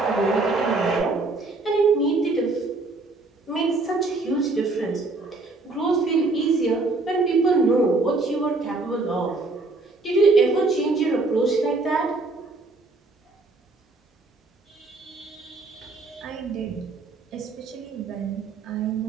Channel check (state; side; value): quieter; left; 3.4 dB